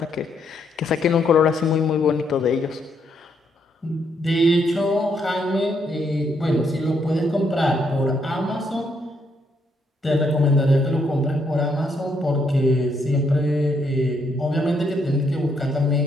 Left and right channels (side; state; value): both; normal; correlation 0.74